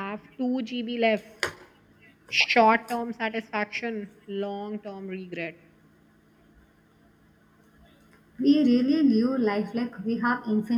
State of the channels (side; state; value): both; identical; correlation 1.00